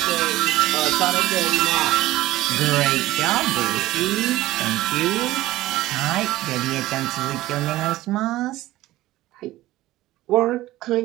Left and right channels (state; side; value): quieter; left; 16.5 dB